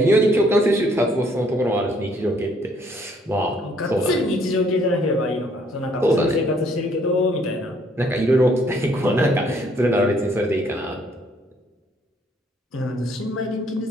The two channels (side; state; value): both; normal; correlation 0.65